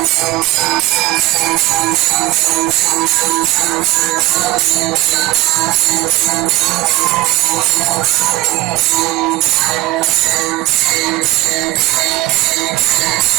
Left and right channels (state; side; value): quieter; left; 18.6 dB